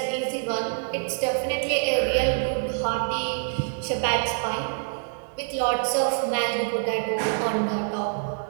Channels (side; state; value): left; silent; 61 dB below the other